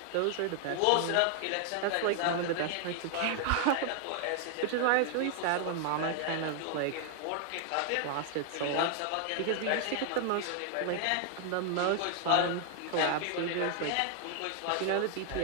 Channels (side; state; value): both; different; correlation 0.00